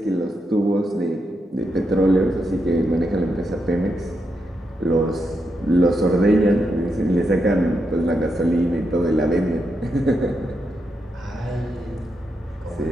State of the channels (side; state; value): both; normal; correlation 0.83